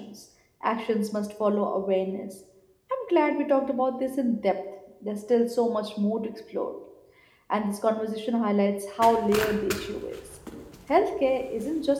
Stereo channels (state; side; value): identical; both; correlation 1.00